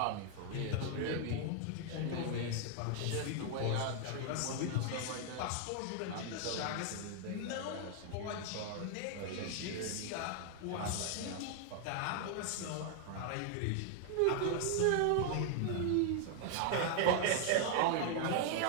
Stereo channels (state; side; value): different; both; correlation 0.00